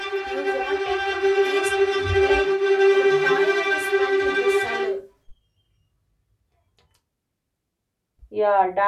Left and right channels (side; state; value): both; identical; correlation 1.00